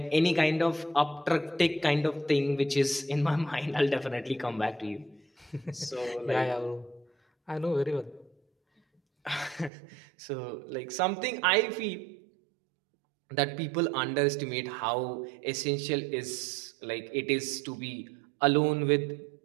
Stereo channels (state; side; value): drops out; left; at 9.7 s